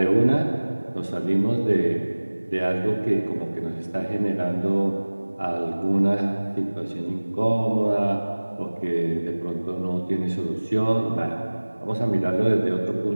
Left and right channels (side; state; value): both; inverted; correlation -1.00